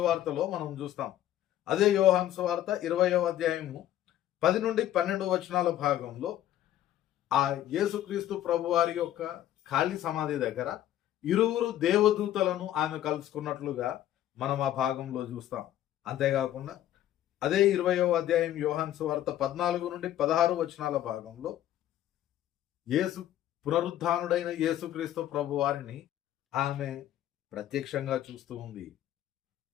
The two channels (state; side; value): quieter; right; 12.5 dB